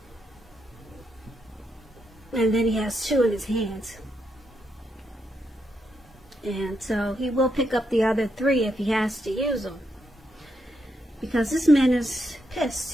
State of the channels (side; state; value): both; normal; correlation 0.81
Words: And then he has 2 in his hands. And so he will pick up the other 3 if he has to use them. Because this man is